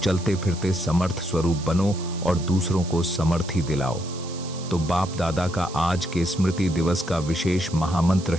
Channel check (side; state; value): right; noise; hiss, 15 dB below the sound